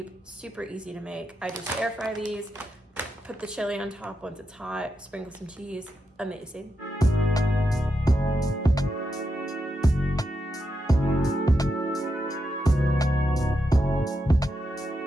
super easy to make. I just air fry these, put the chili on top once it's hot, sprinkle some cheese. Amazing.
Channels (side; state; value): both; normal; correlation 0.85